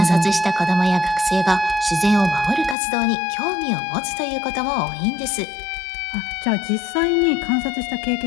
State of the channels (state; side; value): drops out; right; at 2.8 s